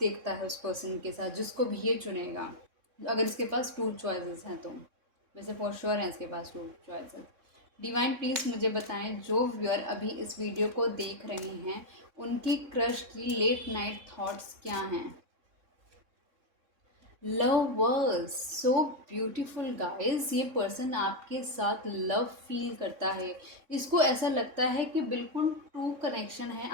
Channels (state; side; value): late; left; 3.6 ms